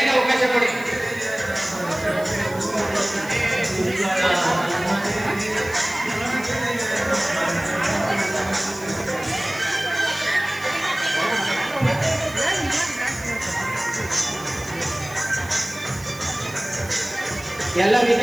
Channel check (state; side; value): noise; right; hiss, 18 dB below the sound